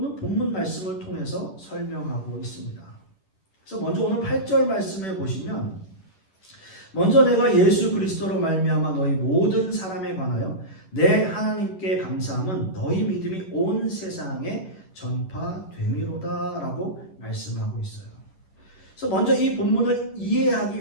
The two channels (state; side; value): late; right; 11 ms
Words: 본문 말씀을 통해서 설명하고 있습니다. 그래서 먼저 오늘 8절 말씀에 보시면 먼저 내가 예수 그리스도로 말미암아 너희 모든 사람에 관하여 내 하나님께 감사함은 너희 믿음이 온 세상에 전파됨이로다 라고 말씀하고 있어요. 그래서 먼저 이 본문을